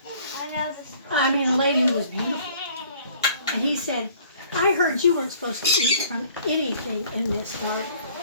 I mean, a lady who was beautiful. And he said, I heard you weren't supposed to eat from anything in this garden.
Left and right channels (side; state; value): both; inverted; correlation -0.55